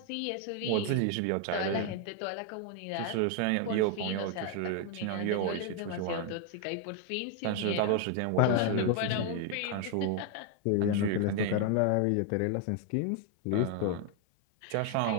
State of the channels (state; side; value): different; both; correlation 0.01